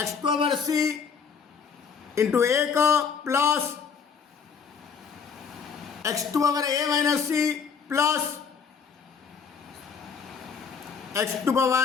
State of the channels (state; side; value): quieter; right; 6.2 dB